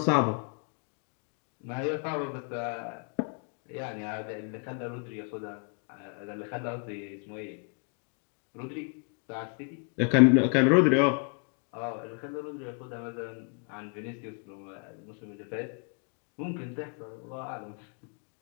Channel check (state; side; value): quieter; right; 39.0 dB